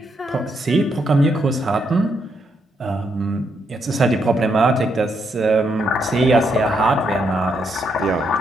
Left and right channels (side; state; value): both; normal; correlation 0.77